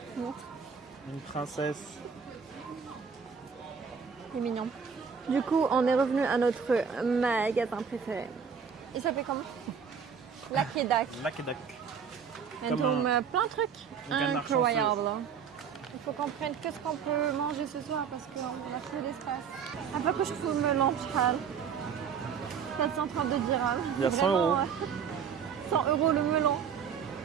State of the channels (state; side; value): quieter; left; 6.8 dB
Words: Montre. Une princesse. C'est mignon. Du coup, on est revenu à notre magasin préféré. Il s'appelle comment? Lucky Duck. Lucky Duck. Comme plein de trucs un canard incroyables. Il faut qu'on prenne qu'est-ce qu'on peut manger ce soir parce qu'on a trop d'espace. Après que je trouve me l'enchal. 432 dirhams. Il y a 100 euros. 100 euros le melon.